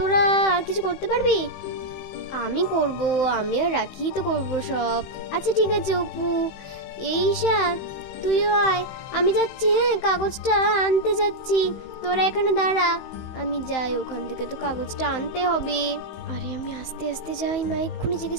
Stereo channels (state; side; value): late; right; 15 ms